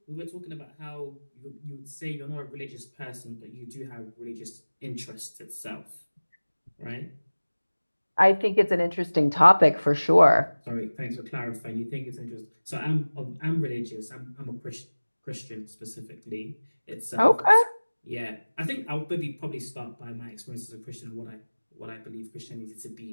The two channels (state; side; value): inverted; both; correlation -1.00